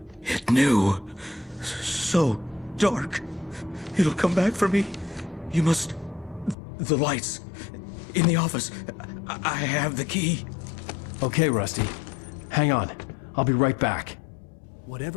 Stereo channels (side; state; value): right; drops out; at 6.6 s